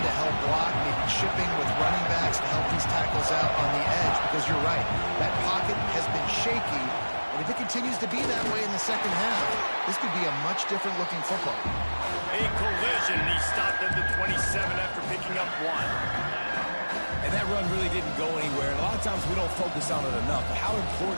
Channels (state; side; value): inverted; both; correlation -1.00